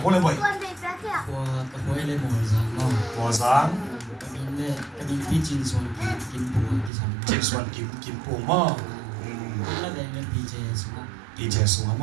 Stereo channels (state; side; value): drops out; left; at 6.9 s